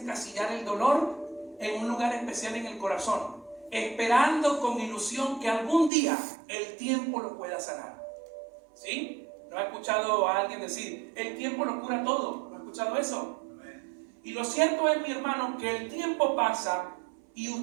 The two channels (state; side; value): drops out; left; at 5.9 s